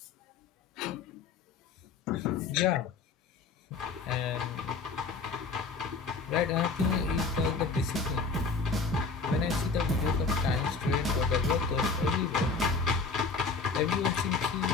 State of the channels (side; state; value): right; quieter; 4.4 dB